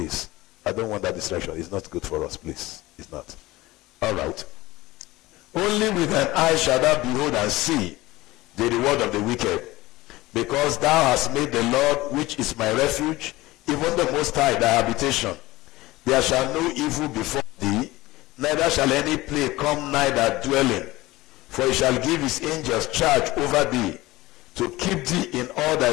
I don't want that distraction. It's not good for us, please. It's not. All right. Only with thine eye shalt thou behold and see the reward of the wicked. Because thou hast made the Lord, which is my refuge, even the Most High, thy habitation. There shall no evil befall thee, neither shall any plague come nigh thy dwelling. For he shall give his angels charge over thee, to keep thee in all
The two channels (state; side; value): quieter; right; 19.0 dB